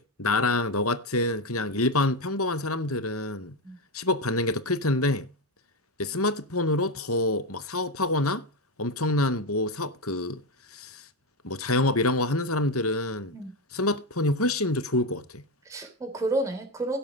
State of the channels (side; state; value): both; normal; correlation 0.12